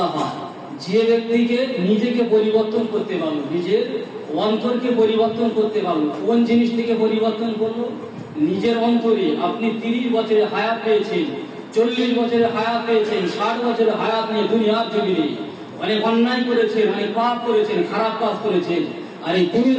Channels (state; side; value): identical; both; correlation 1.00